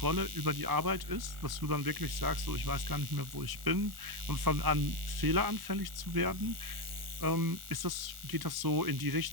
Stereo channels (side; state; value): left; late; 1.4 ms